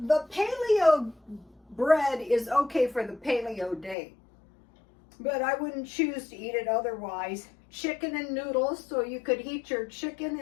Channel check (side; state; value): right; drops out; at 4.0 s